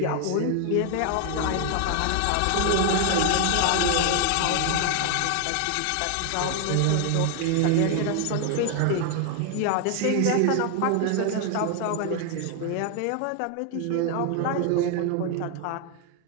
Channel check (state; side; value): different; both; correlation 0.00